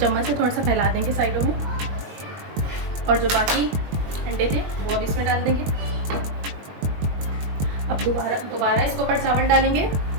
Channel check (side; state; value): left; late; 20 ms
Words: से थोड़ा सा फैला देंगे साइडों में, और जो बाकी अंडे थे वो अब इसमें इसमें डाल देंगे। अब दोबारा इसके ऊपर चावल डालेंगे।